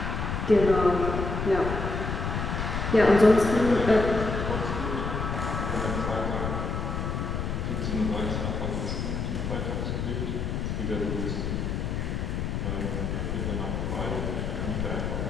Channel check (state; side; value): noise; left; rumble, 2 dB below the sound